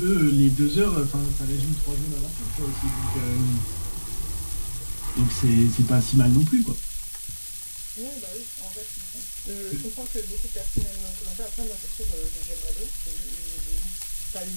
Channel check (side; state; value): both; inverted; correlation -1.00